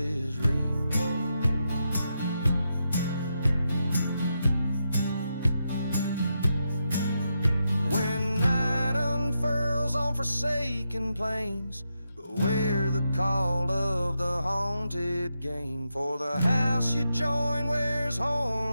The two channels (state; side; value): inverted; both; correlation -0.85